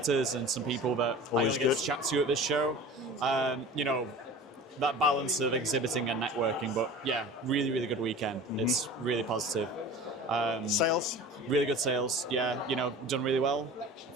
and some people that I only get to chat to at this show. That balance of exhibiting and networking, but yeah, really good weekend. Mm-hmm. It's really positive. Sales? Really good sales, yeah, done really well. I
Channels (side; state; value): both; normal; correlation 0.39